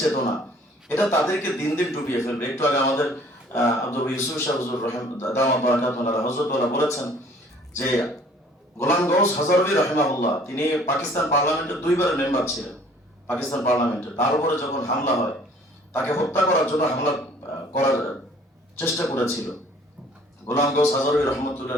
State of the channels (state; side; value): normal; both; correlation 0.54